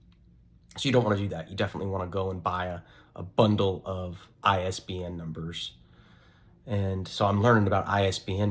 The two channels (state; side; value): identical; both; correlation 1.00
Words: So you don't want to do that. You definitely want to go and buy a bundle of ISBN numbers. And so I'm learning about